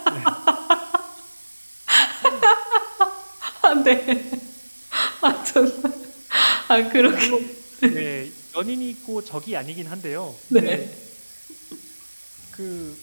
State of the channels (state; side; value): inverted; both; correlation -1.00